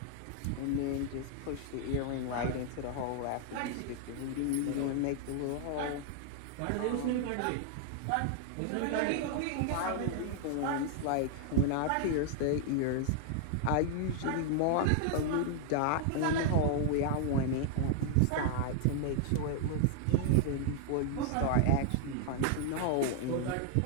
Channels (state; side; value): different; both; correlation 0.00